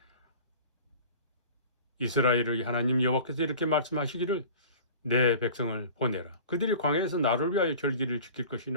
이스라엘의 하나님 여호와께서 이렇게 말씀하시기를 내 백성을 보내라. 그들이 광야에서 나를 위하여 절기를 지킬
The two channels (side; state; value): both; inverted; correlation -0.41